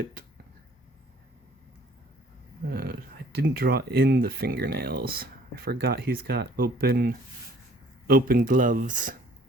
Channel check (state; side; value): normal; both; correlation 0.56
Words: I didn't draw in the fingernails. I forgot he's got open gloves.